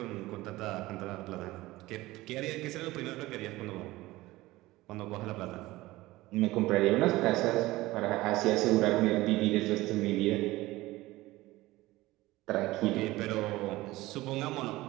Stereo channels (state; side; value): quieter; left; 18.5 dB